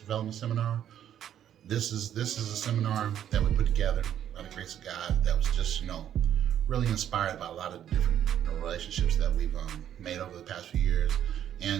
Seminar. This is a seminar that we put together by the grace of God that was just really inspired by a lot of different relationships that we've made over the past few years,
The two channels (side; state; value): left; quieter; 10.3 dB